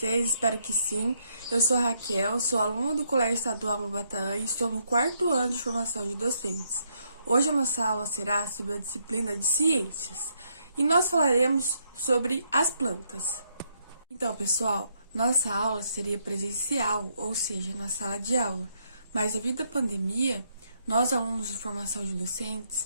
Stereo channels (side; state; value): both; inverted; correlation -0.75